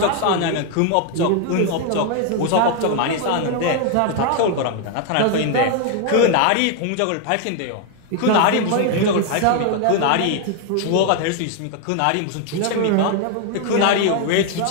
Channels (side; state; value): both; different; correlation 0.00